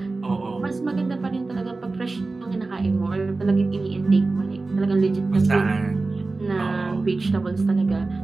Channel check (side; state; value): left; quieter; 3.5 dB